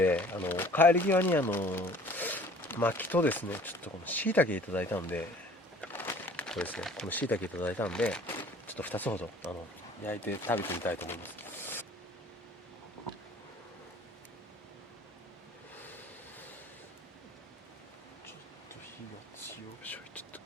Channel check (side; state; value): both; normal; correlation 0.50